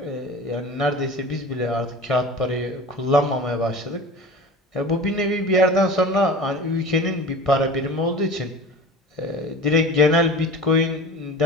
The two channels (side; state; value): both; normal; correlation 0.36